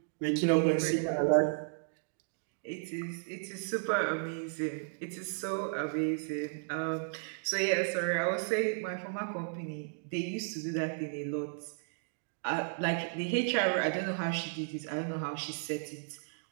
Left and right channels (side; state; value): left; silent; digital silence